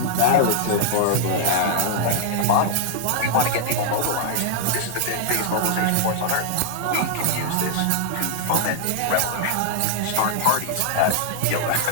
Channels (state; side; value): different; both; correlation 0.00